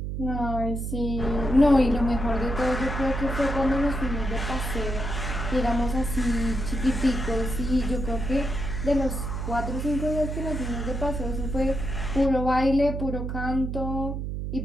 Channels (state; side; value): noise; right; hum, 4 dB below the sound